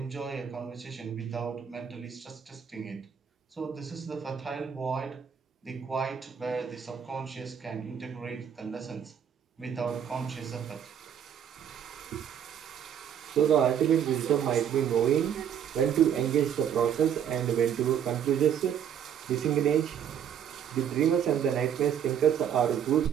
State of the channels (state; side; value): quieter; left; 8.7 dB